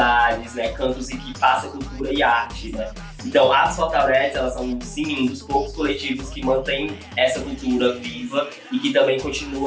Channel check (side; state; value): both; identical; correlation 1.00